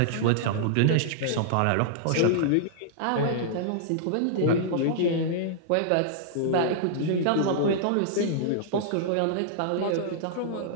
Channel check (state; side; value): different; both; correlation -0.02